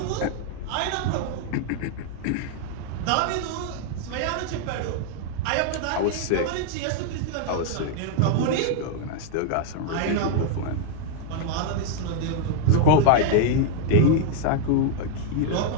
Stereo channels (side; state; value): both; different; correlation 0.00